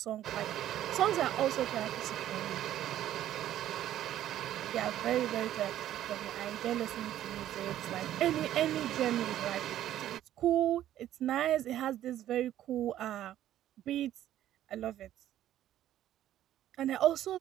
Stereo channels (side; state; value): left; quieter; 12.4 dB